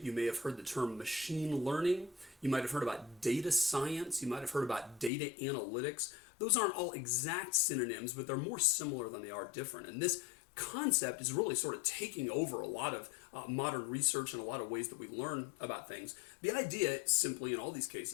You may have heard the term machine learning. You might have heard about data science. You might have heard about data analytics. Those aren't all exact synonyms, but they're more similar than they are different. And this concept is really sort of taking over a lot of modern research and a lot of ways that we learn about things. The idea, simply in all these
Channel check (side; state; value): right; drops out; at 5.1 s